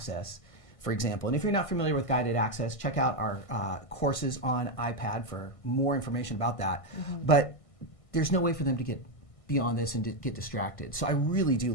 for example, and if you're not familiar with guided access, check out our courses on iPad for more information about that. But there's no way for them to get beyond this and to get distracted. So I really do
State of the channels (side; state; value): right; late; 1.5 ms